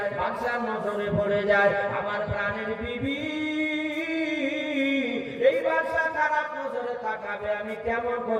বাদশার নজরে পড়ে যায়। আমার প্রাণের বিবি, এই বাদশা খারাপ নজরে তাকাবে, আমি কেমন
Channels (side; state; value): both; identical; correlation 1.00